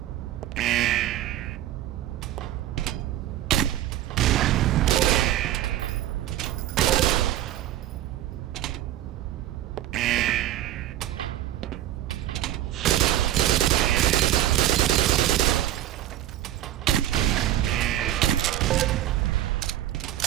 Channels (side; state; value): left; quieter; 13.2 dB